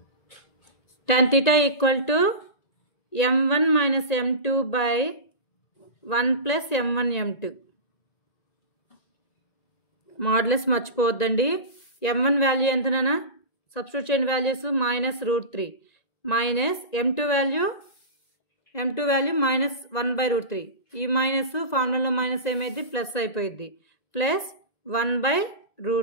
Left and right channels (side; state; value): right; late; 1.9 ms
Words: tan θ equal to m1 minus m2 by 1 plus m1 m2. Modulus మర్చిపోవద్దండి. m1 వాల్యూ ఎంత నాన్న? సబ్స్టిట్యూట్ చేయండి values. Minus √3 minus m2 value minus 1/√3. ఈ మైనస్ ఫార్ములాలో మైనస్ ఏమైంది? ప్లస్ అయిపోయింది. Plus